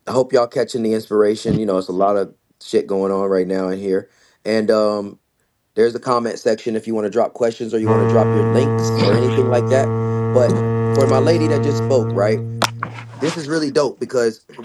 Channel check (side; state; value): both; identical; correlation 1.00